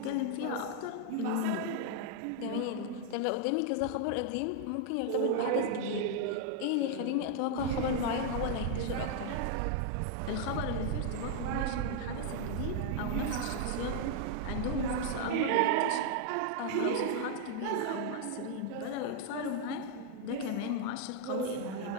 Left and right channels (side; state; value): both; different; correlation 0.00